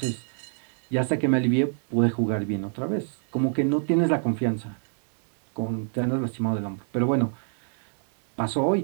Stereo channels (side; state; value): left; silent; 56 dB below the other